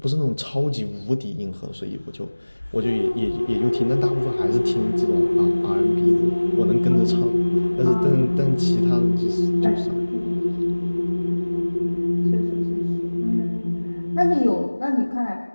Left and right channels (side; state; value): both; inverted; correlation -1.00